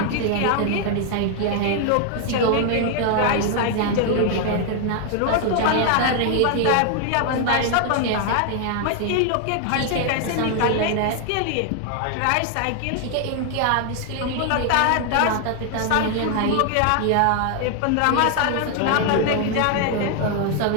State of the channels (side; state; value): both; different; correlation 0.00